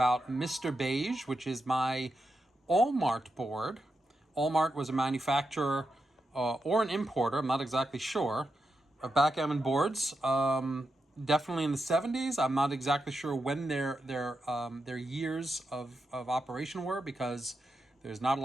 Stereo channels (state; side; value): normal; both; correlation 0.87